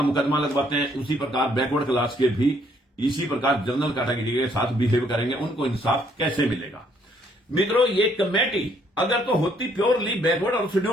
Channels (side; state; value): both; normal; correlation 0.67